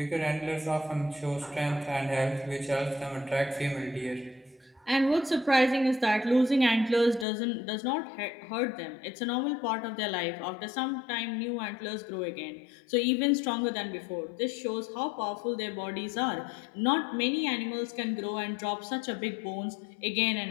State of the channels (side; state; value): right; drops out; at 7.2 s